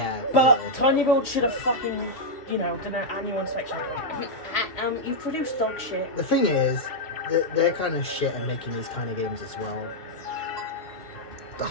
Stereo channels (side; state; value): right; late; 2.7 ms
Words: But yeah. Tiny Build should have fucking, done an annual inspection. You've produced dog shit. The thing is, they're kind of shit at making these kind of games as well.